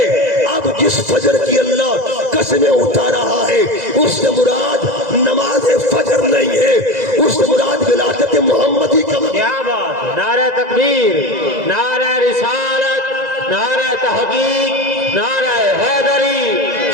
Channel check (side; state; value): left; late; 2.0 ms